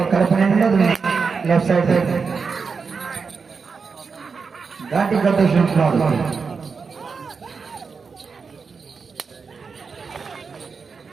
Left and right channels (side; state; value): left; quieter; 5.2 dB